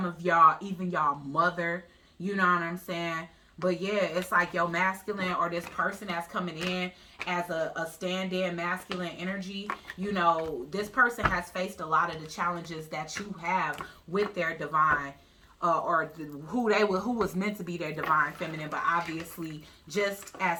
of y'all, even y'all mother, you know what I'm saying? But yeah, it's like your masculine, or this person that's coming in as a stand-in masculine energy, you know, this person has faced a lot of the challenges that you have with their divine, who was meant to be their divine feminine. But obviously, just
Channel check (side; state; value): both; identical; correlation 1.00